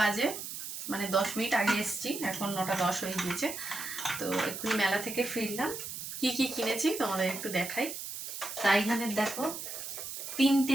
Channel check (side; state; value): right; noise; hiss, 7 dB below the sound